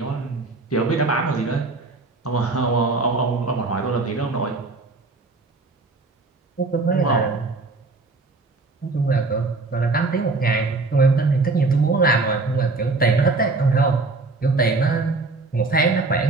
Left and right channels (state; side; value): quieter; left; 3.6 dB